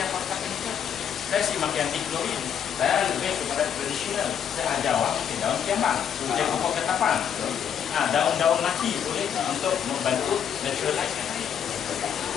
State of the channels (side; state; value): right; quieter; 8.4 dB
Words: yang pakai chemical. Saya sih makin anti klorin. Saya lebih kepada tradisional. Saya ajar awak pakai daun kiambang, pakai pokok ketapang. Daun-daun mati boleh untuk membantu naturalize.